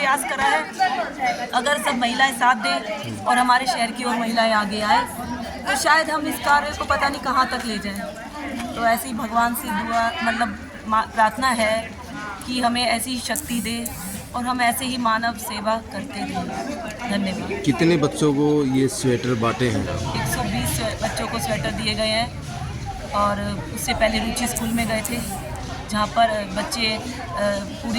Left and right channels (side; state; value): both; identical; correlation 1.00